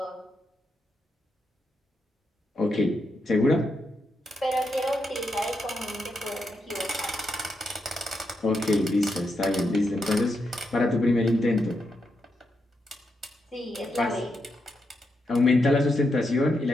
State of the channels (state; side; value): normal; both; correlation 0.83